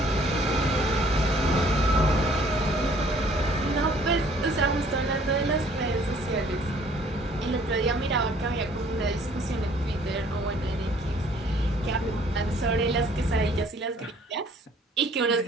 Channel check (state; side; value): normal; both; correlation 0.58